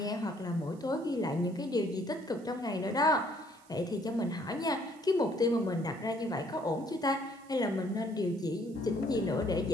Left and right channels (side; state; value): right; noise; hiss, 28 dB below the sound